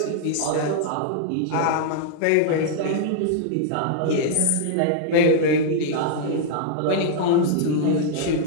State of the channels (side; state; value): both; different; correlation -0.01